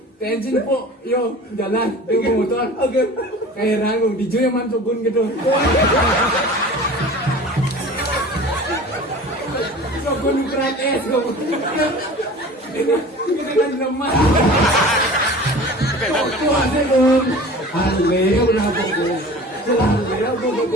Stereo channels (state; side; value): normal; both; correlation 0.40